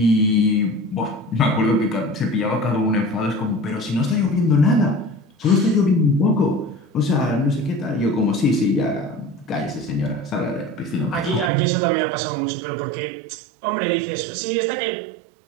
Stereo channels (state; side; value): drops out; left; at 11.5 s